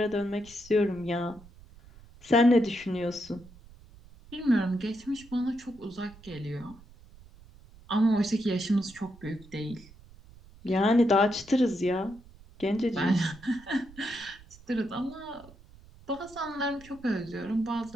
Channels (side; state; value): right; noise; rumble, 22 dB below the sound